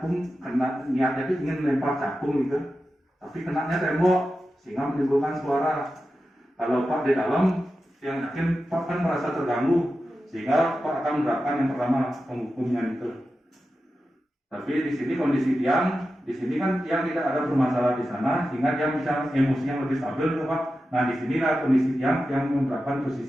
kena niatnya itu ingin melempar cakung gitu, tapi kenanya tembok sehingga menimbulkan suara. Kalau Pak di dalam, yang yakin Pak kan merasa terganggu, sehingga Pak akan menerapkan yang pertama penghukumnya itu. Tapi di sini kondisi Tiang, di sini kan Tiang tidak ada bermasalah di sana, sehingga dia bisa emosinya lebih stabil, tuh, Pak. Nah di sinilah kondisi Tiang yang menerapkan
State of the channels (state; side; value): normal; both; correlation 0.92